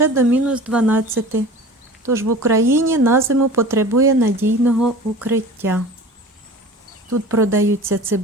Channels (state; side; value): normal; both; correlation 0.39